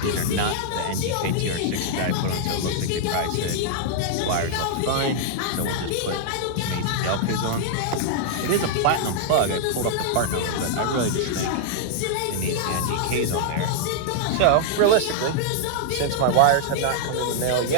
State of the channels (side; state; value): both; different; correlation -0.01